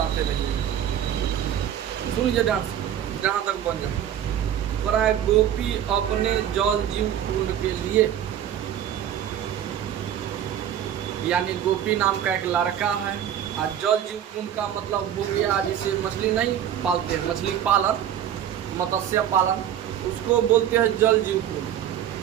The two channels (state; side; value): quieter; left; 10.2 dB